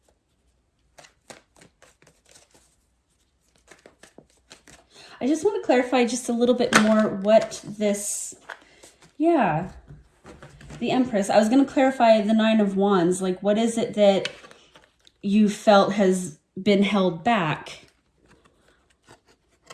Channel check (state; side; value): identical; both; correlation 1.00